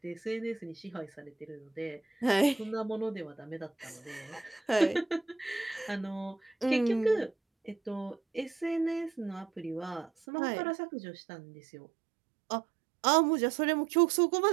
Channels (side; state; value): left; drops out; at 10.1 s